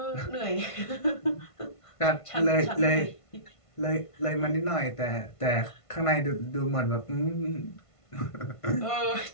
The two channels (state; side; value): late; right; 1.5 ms